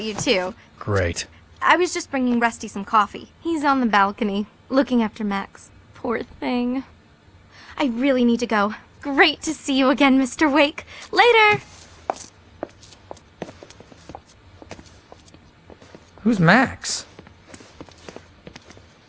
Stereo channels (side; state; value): both; identical; correlation 1.00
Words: you, too. Great. I was just bringing Rusty some coffee. He's on the balcony, looking after Max. Poor thing. I really need to go. Great to see you again, Mr. Wake. Later! Who's Max?